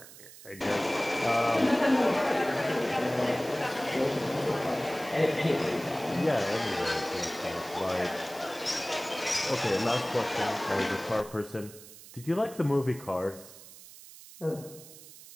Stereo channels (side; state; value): right; noise; hiss, 18 dB below the sound